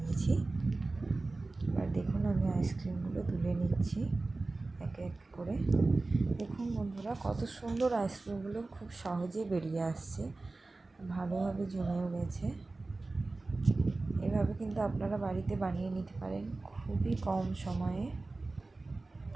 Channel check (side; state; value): left; quieter; 3.3 dB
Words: এবার দেখুন আমি আইসক্রিমগুলো তুলে নিচ্ছি এক এক করে। দেখুন বন্ধুরা, কত সুন্দর আইসক্রিমগুলো খুব সহজে বেরিয়ে আসছে, ভালোভাবে জমেও গেছে। এভাবে কিন্তু আপনারা বাড়িতে বানিয়ে নিতে পারেন, খুবই কম সময়ে